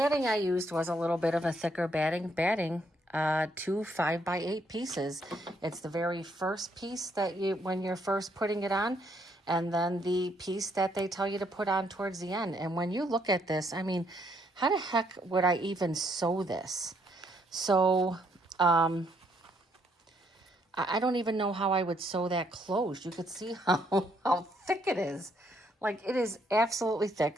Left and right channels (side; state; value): both; normal; correlation 0.72